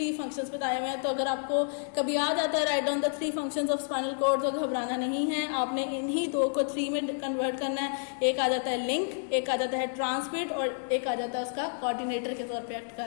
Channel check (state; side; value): silent; right; digital silence